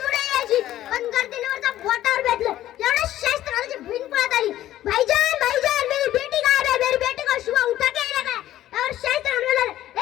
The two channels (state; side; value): quieter; right; 13.4 dB